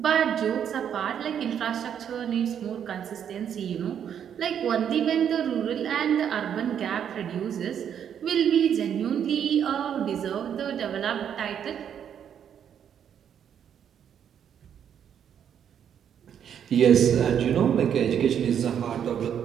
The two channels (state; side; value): quieter; left; 8.7 dB